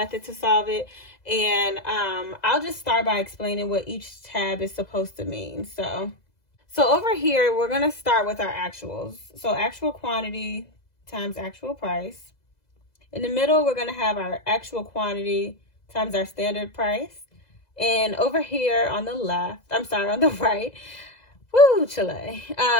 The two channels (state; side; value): late; right; 2.0 ms